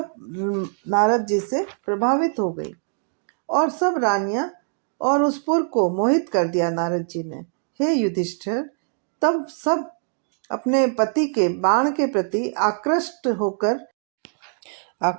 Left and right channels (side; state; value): left; silent; digital silence